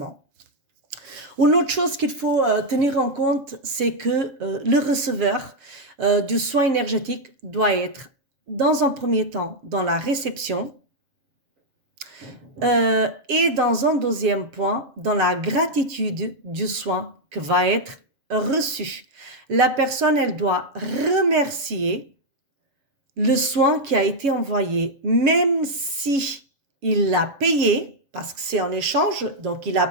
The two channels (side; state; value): left; late; 7.2 ms